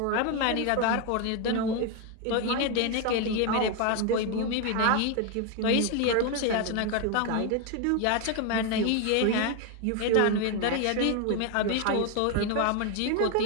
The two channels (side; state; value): both; different; correlation 0.01